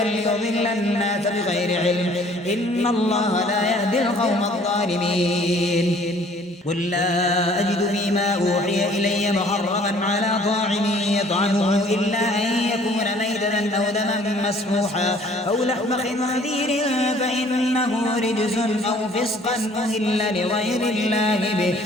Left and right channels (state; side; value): normal; both; correlation 0.56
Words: الناس بغير علم إن الله لا يهدي القوم الظالمين قل لا أجد فيما أوحي إلي محرما على طاعم يطعمه إلا أن يكون ميتة أو دما مسفوحا أو لحم خنزير فإنه رجس أو فسقا أهل لغير الله به